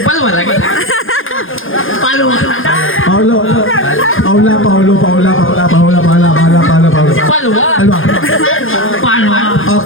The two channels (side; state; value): right; late; 0.59 ms